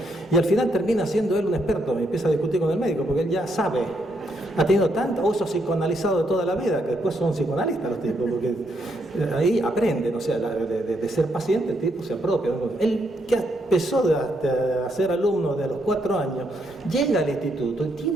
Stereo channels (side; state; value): both; normal; correlation 0.76